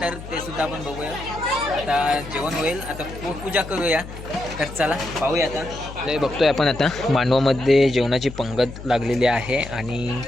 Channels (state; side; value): noise; left; hum, 12 dB below the sound